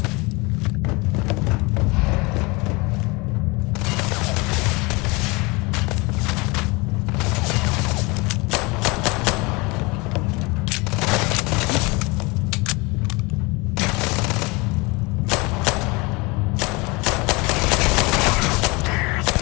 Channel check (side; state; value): right; quieter; 26.0 dB